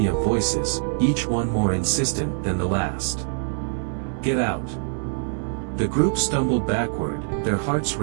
of voices, each one more insistent than the last. "Get out!" The group stumbled backward, their hearts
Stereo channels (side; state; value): left; silent; digital silence